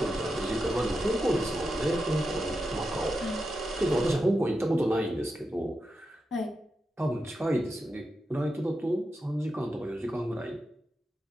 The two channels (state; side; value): normal; both; correlation 0.88